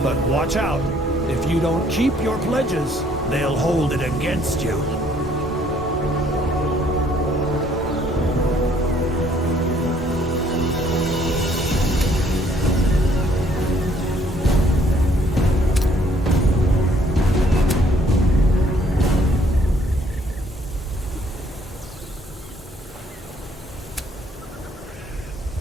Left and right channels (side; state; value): both; normal; correlation 0.64